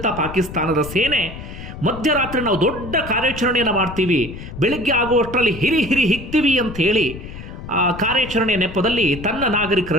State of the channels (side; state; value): left; noise; rumble, 12 dB below the sound